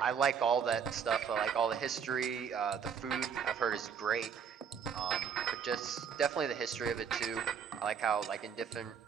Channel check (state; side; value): quieter; left; 7.2 dB